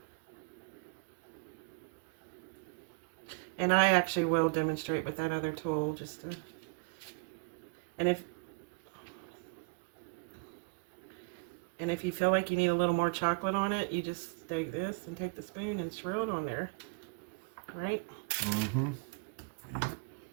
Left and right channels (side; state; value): left; quieter; 34.7 dB